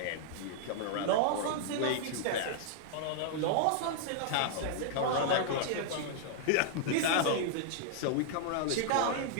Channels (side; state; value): both; different; correlation -0.01